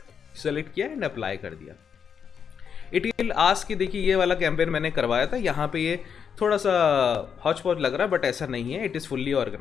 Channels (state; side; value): quieter; right; 7.2 dB